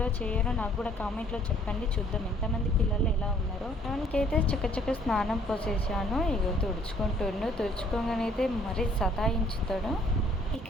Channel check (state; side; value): normal; both; correlation 0.61